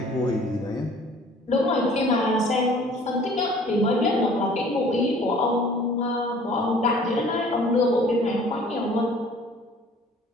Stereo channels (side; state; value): both; normal; correlation 0.52